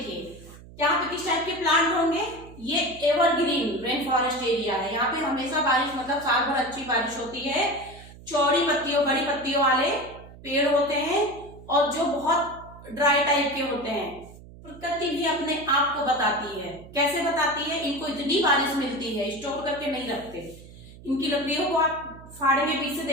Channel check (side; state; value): right; noise; hum, 19 dB below the sound